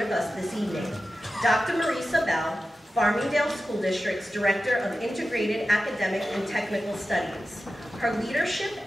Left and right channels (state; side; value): normal; both; correlation 0.93